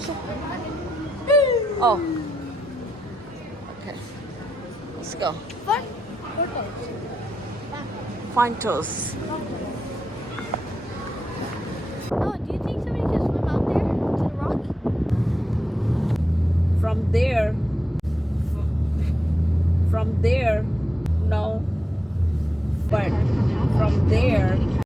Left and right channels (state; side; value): normal; both; correlation 0.86